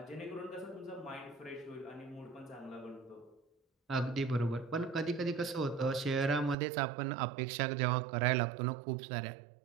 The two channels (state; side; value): drops out; left; at 6.6 s